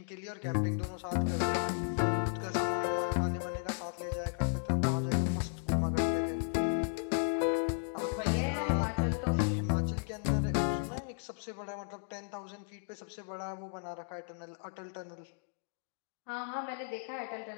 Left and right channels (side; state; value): right; silent; digital silence